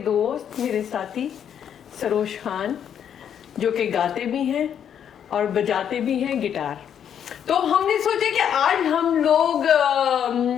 दोस्त, मेरे साथी सरोज खान, जो कि गाते भी हैं और बजाते भी हैं गिटार। तो हमने सोचा कि आज हम लोग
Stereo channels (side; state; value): right; quieter; 8.8 dB